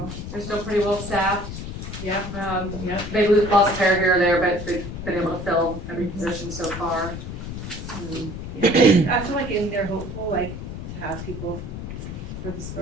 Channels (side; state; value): left; noise; rumble, 8 dB below the sound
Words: They're still pretty well staffed. yeah, yeah. They lost a pair here or there, but they've been able to fill every position so far. I feel like they're hopeful, like, to have people for this